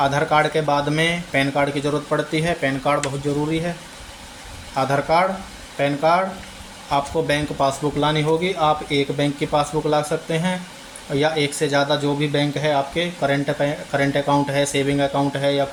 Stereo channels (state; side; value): identical; both; correlation 1.00